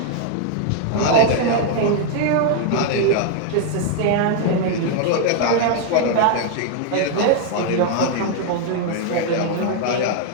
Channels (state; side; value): different; both; correlation 0.00